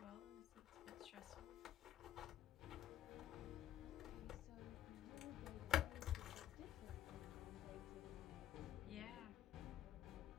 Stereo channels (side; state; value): right; quieter; 11.5 dB